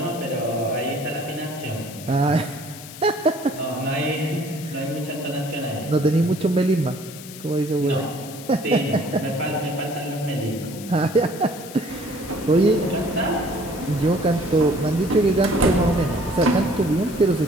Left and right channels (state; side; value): noise; left; hiss, 15 dB below the sound